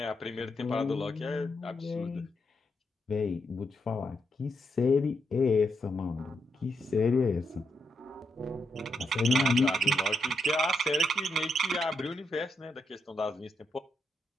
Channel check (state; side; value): normal; both; correlation 0.81